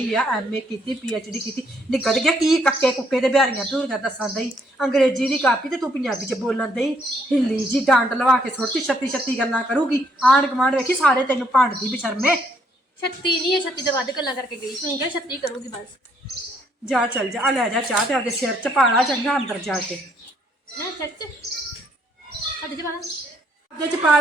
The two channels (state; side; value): normal; both; correlation 0.69